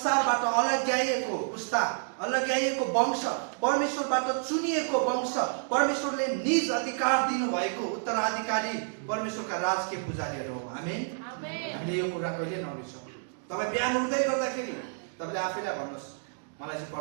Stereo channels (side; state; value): left; silent; digital silence